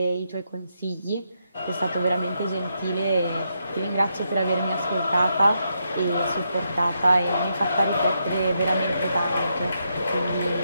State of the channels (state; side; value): inverted; both; correlation -0.81